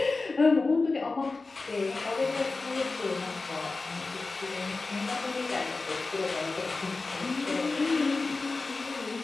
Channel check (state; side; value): quieter; right; 3.7 dB